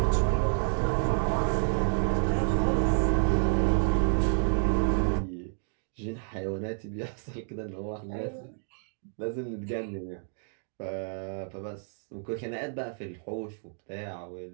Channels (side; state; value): left; silent; 58 dB below the other